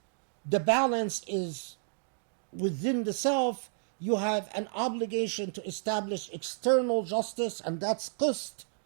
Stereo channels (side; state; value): left; silent; digital silence